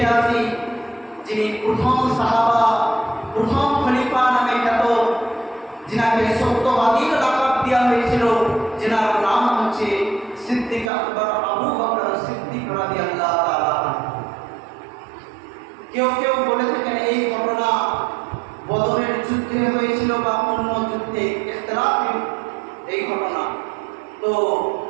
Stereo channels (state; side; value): drops out; left; at 10.9 s